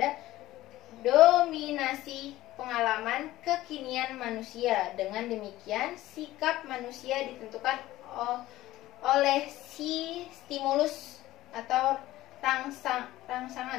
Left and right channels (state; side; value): quieter; right; 16.1 dB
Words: dominasi pengalaman kekinian manusia. Dengan demikian, sikap manusia ditentukan oleh si stimulus atau